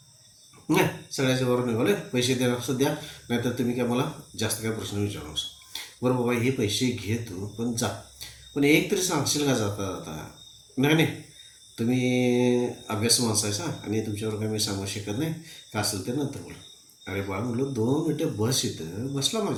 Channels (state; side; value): identical; both; correlation 1.00